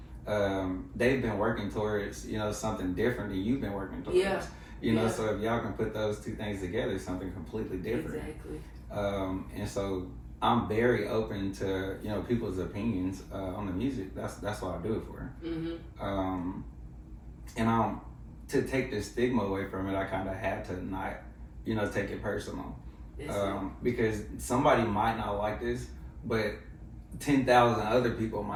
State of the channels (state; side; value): identical; both; correlation 1.00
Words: They've been working towards something different than you've been working towards. Yeah. You know, so if y'all can put those two things together, it's something completely different. Exactly. And so I'm very open to people's opinions on the music. That's what I do it for. And to take the stigma away from it, I kind of had to not take it personal, because somebody might not like this, but 10,000 other people